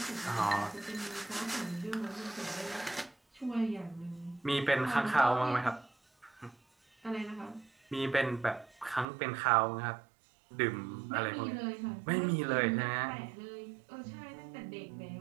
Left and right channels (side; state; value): left; drops out; at 9.1 s